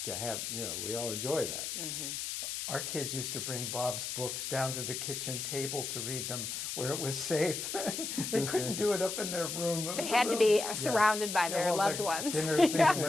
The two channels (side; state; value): left; noise; hiss, 4 dB below the sound